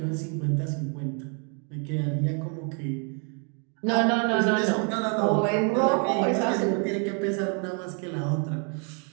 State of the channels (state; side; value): quieter; left; 38.6 dB